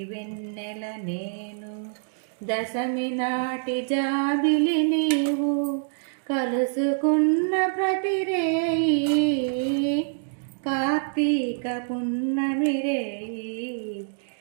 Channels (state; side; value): silent; left; digital silence